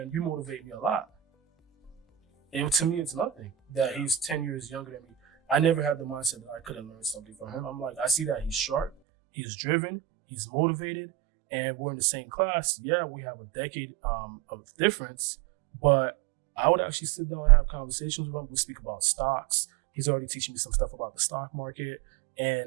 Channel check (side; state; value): left; drops out; at 8.9 s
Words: you motivate me a lot. And to me, it's nothing that he's 10 years younger than me. I never had the mindset that I couldn't learn something from him. I'm like, I see that he's sharp, he's driven, he's motivated, and we're in the same class. Yeah, we have a decade of difference, but I would actually sit down and have conversations with him. We speak about stocks. He's already teaching me some stuff about the stock market